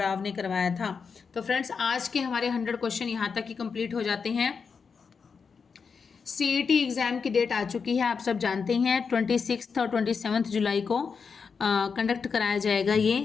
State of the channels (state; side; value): quieter; right; 5.6 dB